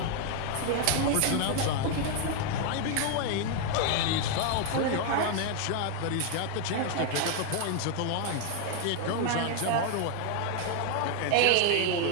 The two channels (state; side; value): different; both; correlation 0.00